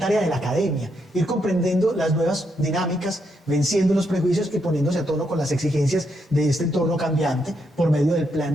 de la academia ir comprendiendo las nuevas dinámicas, venciendo los prejuicios y poniéndose a tono con las exigencias de este entorno cambiante por medio del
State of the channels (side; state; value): both; normal; correlation 0.79